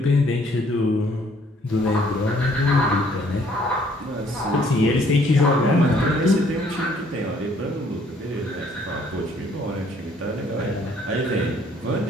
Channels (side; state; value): both; normal; correlation 0.62